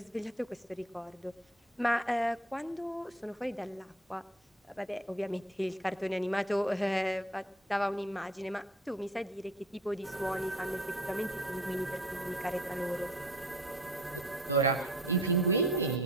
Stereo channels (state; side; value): normal; both; correlation 0.49